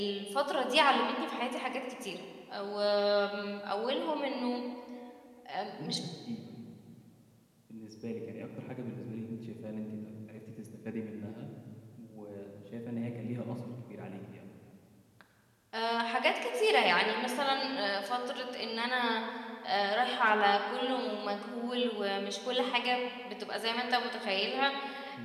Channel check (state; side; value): identical; both; correlation 1.00